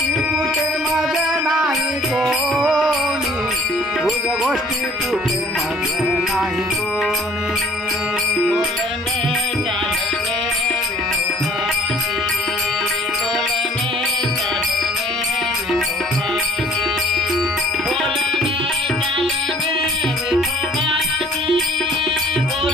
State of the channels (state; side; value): normal; both; correlation 0.54